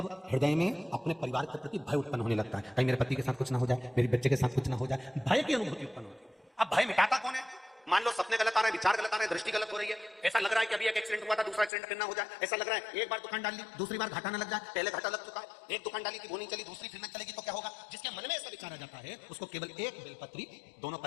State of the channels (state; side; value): drops out; right; at 11.7 s